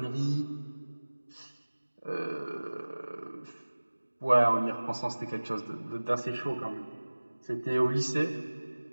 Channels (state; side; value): inverted; both; correlation -1.00